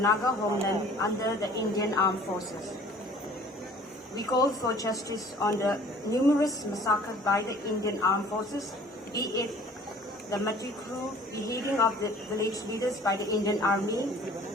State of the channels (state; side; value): normal; both; correlation 0.50